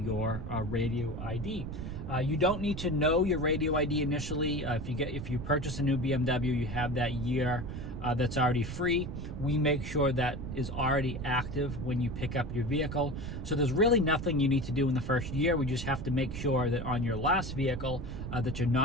radio ID. You don't need to know your radio ID initially. If you purchase a new BMW, you have that year that's already free. We make sure that is already active when you pick up your vehicle. So there's really nothing you need to do in the first year. We just have to make sure that on your last vehicle that you're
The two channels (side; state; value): right; noise; rumble, 6 dB below the sound